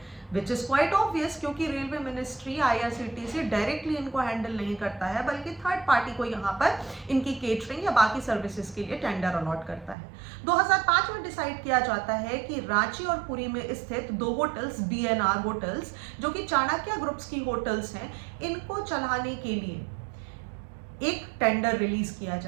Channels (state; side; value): drops out; left; at 10.0 s